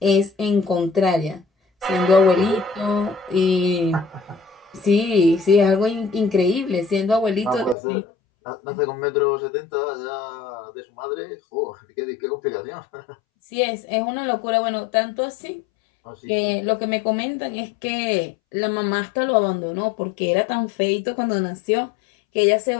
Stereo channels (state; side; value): drops out; right; at 7.8 s